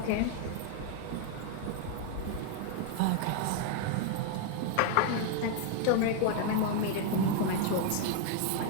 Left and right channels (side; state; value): both; different; correlation 0.00